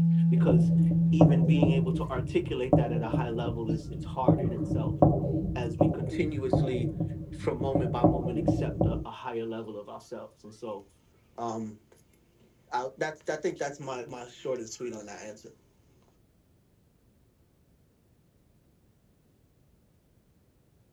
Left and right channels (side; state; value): both; identical; correlation 1.00